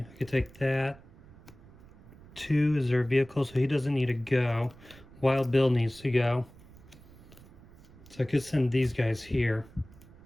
I could take that. 2 is their vehicle, so he doesn't need to go. Wild Bill needs to go. So I could send these guys here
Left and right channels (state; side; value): noise; right; rumble, 22 dB below the sound